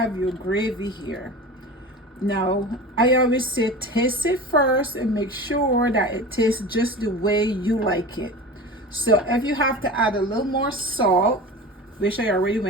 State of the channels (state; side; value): normal; both; correlation 0.33